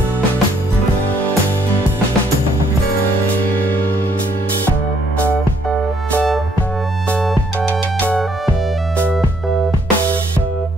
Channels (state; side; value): normal; both; correlation 0.68